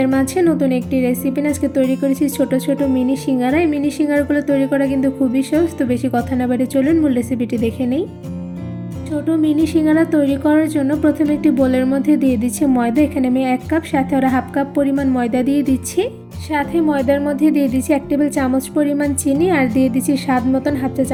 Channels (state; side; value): identical; both; correlation 1.00